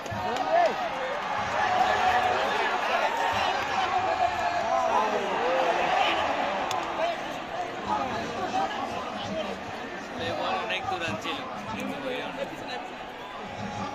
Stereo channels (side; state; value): both; identical; correlation 1.00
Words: অনেক দূরান ছিল